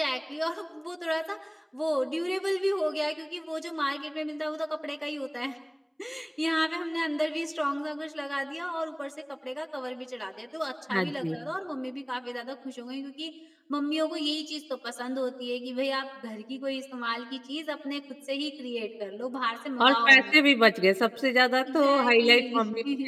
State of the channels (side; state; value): both; identical; correlation 1.00